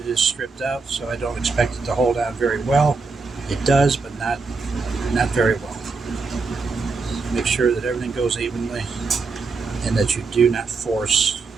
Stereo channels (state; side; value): quieter; left; 4.3 dB